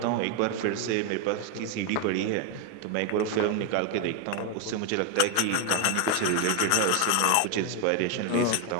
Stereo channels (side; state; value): both; different; correlation 0.01